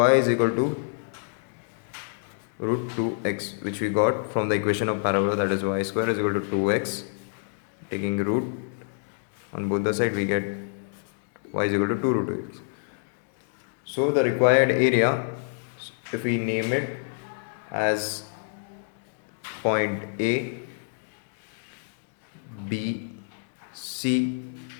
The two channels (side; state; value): right; silent; digital silence